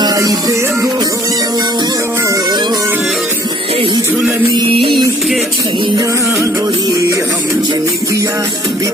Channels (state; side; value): normal; both; correlation 0.58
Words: देबो एही झुलनी के छैया गोरी हम जिंदगिया